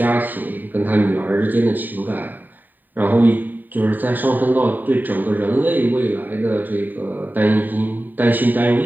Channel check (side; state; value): left; late; 0.089 ms